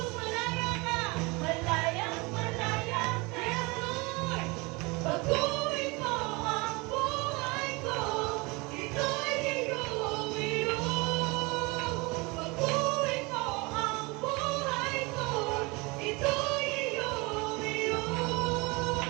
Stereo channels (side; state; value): left; quieter; 26.2 dB